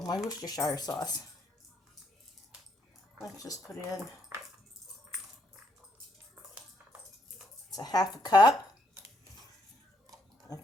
my Worcestershire sauce. Let's just put in, it's a half a cup of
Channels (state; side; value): normal; both; correlation 0.73